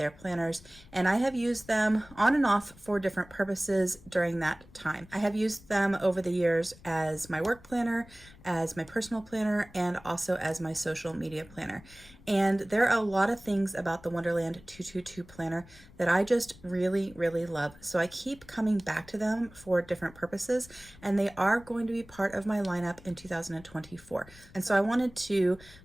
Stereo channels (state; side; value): noise; left; rumble, 22 dB below the sound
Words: planners, and I have used them on and off for different purposes during that time. I have used them over the years as my work planner, as my personal planner, and also as my social media planner. And there are a lot of things about the Wonderland222 planner that I just really love. So I keep coming back to them for different purposes, and they are going to be part of my lineup in 2024. And so I wanted to